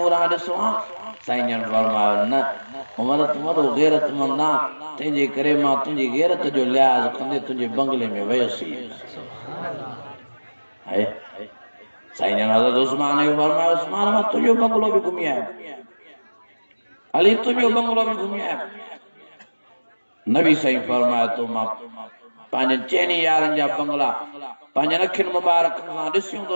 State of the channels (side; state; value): both; inverted; correlation -1.00